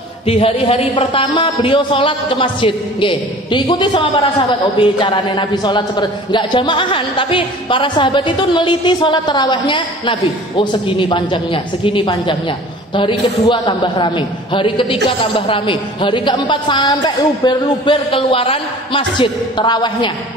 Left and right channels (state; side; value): normal; both; correlation 0.45